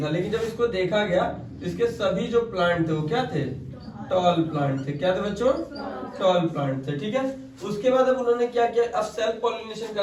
था। लेकिन जब इसको देखा गया तो इसके सभी जो प्लांट थे वो क्या थे, टॉल प्लांट थे। क्या थे बच्चों, टॉल प्लांट थे, ठीक है। उसके बाद अब उन्होंने क्या किया, अब सेल्फ पॉलिनेशन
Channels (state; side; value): identical; both; correlation 1.00